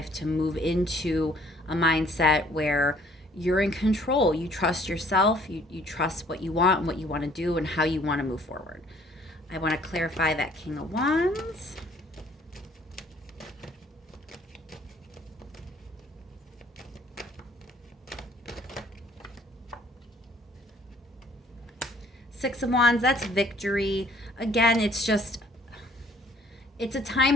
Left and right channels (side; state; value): both; normal; correlation 0.59